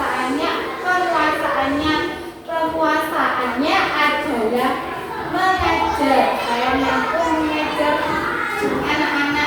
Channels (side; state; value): both; identical; correlation 1.00